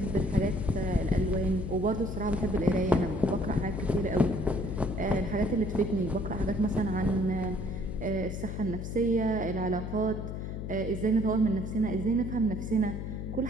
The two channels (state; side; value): noise; left; hum, 5 dB below the sound